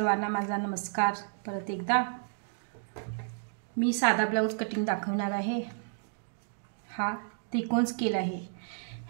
माझा नमस्कार परत एकदा। मी साधा ब्लाउज कटिंग दाखवणार आहे। हा त्रिकोण स्केल आहे,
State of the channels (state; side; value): silent; left; digital silence